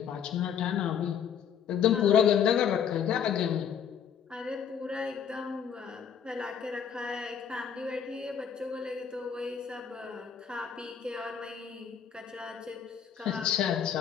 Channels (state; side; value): quieter; right; 7.9 dB